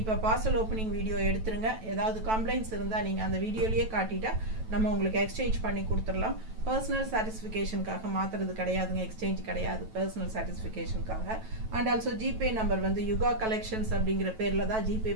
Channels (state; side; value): late; left; 9.1 ms